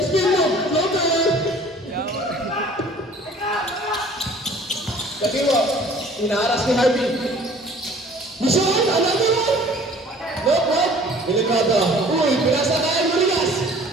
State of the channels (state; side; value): normal; both; correlation 0.51